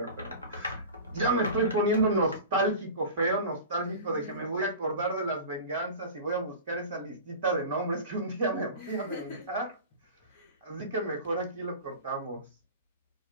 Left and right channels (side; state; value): both; inverted; correlation -0.34